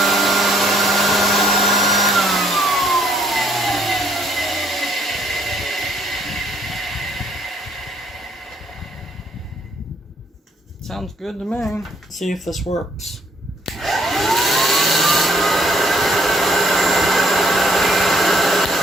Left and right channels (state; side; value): normal; both; correlation 0.67